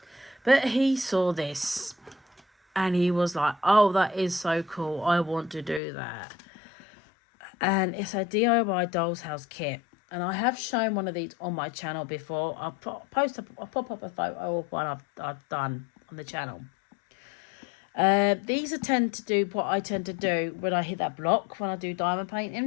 But he saw this, and he was like, oh, that is so cool, I want to do that. And it's a DIY Dolls House kit. And I have shown one of these on my channel before. I'll pop up a photo of one I've done on the channel. These tend to do what I tend to do when I hit that block, when I do diamond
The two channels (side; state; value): right; drops out; at 5.8 s